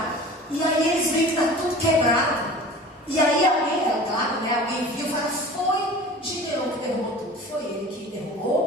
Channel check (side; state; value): both; normal; correlation 0.40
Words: E aí eles veem que está tudo quebrado. E aí alguém, é claro, né, alguém viu e fala, foi Gideão que derrubou tudo, foi ele que